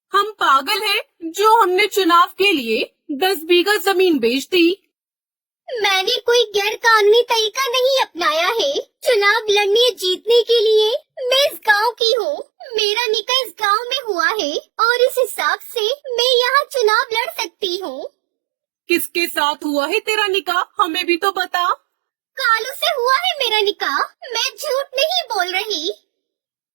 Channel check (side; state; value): left; drops out; at 12.0 s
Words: हम पागल हैं जो हमने चुनाव के लिए 10 बीघा जमीन बेच दी। मैंने कोई गैर कानूनी तरीका नहीं अपनाया है। चुनाव लड़ने जीतने के लिए मैं इस गांव की हूँ। मेरा निकाह इस गांव में हुआ है और इस हिसाब से मैं यहाँ चुनाव लड़ सकती हूँ। किसके साथ हुआ है तेरा निकाह? हमें भी तो बता। कालू से हुआ है मेरा निकाह, मैं झूठ नहीं बोल रही।